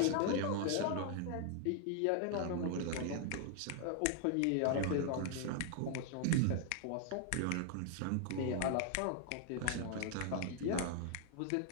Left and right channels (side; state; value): both; different; correlation 0.00